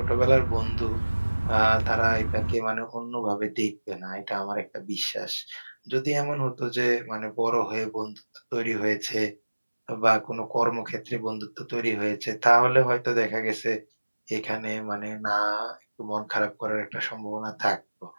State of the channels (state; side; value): inverted; both; correlation -1.00